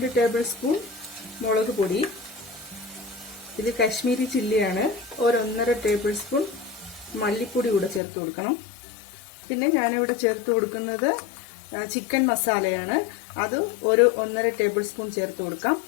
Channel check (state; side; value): drops out; right; at 8.0 s